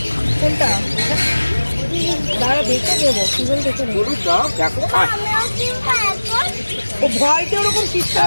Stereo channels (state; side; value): inverted; both; correlation -1.00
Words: কোনটা? দাঁড়া দেখে দেবো, সিজন দেখে নেবো। গরুর দাও দেখো। ও ভয়তে ওরকম চিৎকার